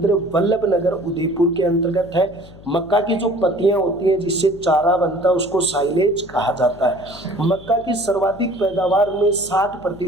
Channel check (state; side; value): noise; left; hum, 20 dB below the sound